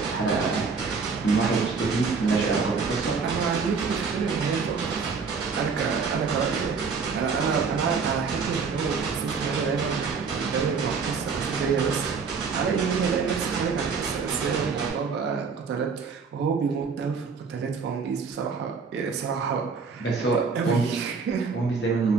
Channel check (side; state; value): left; quieter; 5.2 dB